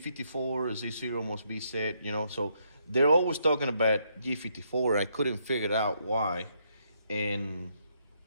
Z0 must be set, so they're always talking about G54. I couldn't figure out why, and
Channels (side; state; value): both; inverted; correlation -0.74